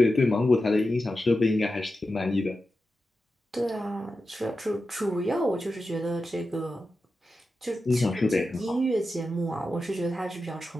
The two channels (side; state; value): both; normal; correlation 0.91